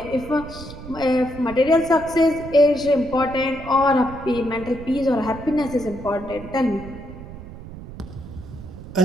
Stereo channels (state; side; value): noise; right; rumble, 14 dB below the sound